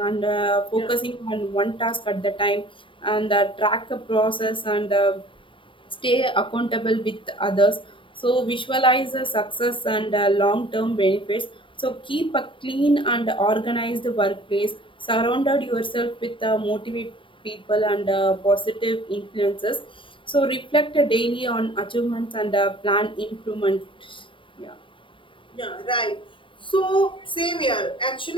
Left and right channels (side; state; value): right; late; 0.25 ms